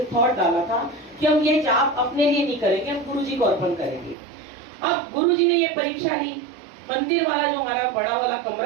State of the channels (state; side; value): drops out; left; at 4.2 s